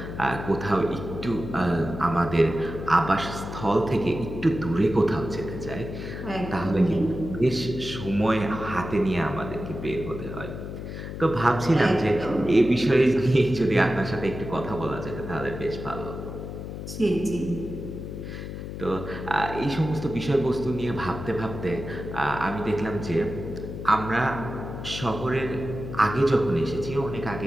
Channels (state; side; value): noise; left; hum, 8 dB below the sound